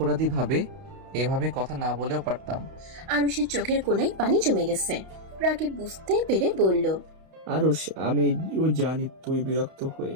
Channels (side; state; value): left; late; 31 ms